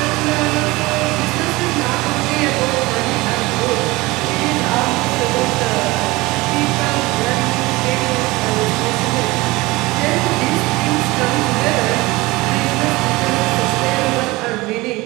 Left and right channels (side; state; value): left; quieter; 21.4 dB